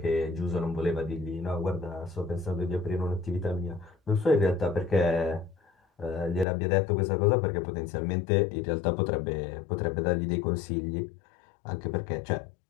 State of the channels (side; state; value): right; drops out; at 6.5 s